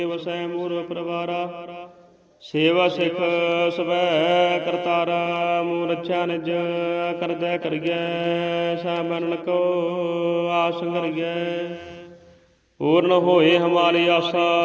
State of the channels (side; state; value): both; identical; correlation 1.00